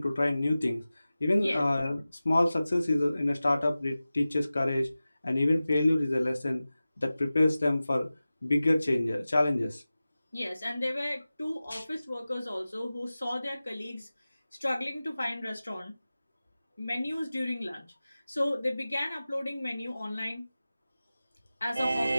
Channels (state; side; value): inverted; both; correlation -0.96